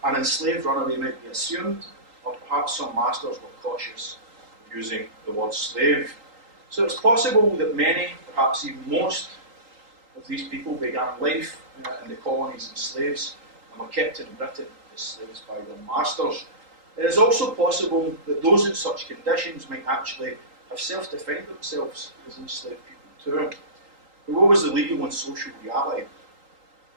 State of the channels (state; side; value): late; left; 3.8 ms